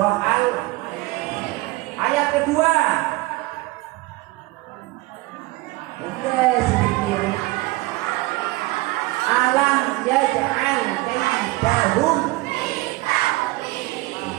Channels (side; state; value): left; quieter; 20.6 dB